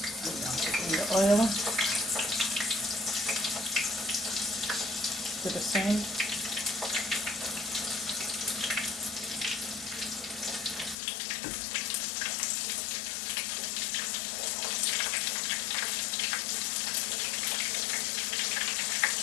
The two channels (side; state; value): right; drops out; at 11.0 s